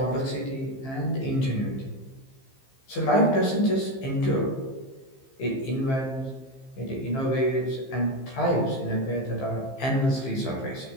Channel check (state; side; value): late; right; 15 ms